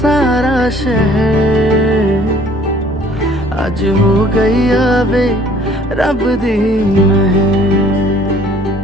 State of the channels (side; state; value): both; normal; correlation 0.55